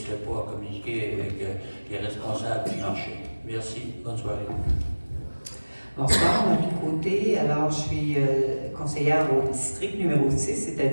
pas à communiquer avec les responsables du marché. Merci, bonne soirée. Bonsoir, Marie Côté. Alors, je suis conseillère au district numéro 6,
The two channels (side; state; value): both; inverted; correlation -1.00